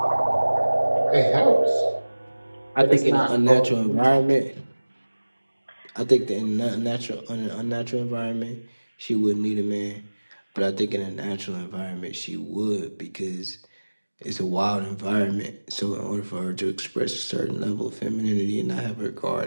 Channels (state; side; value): inverted; both; correlation -1.00